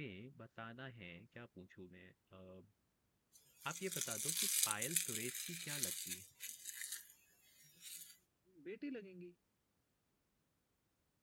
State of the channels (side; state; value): both; identical; correlation 1.00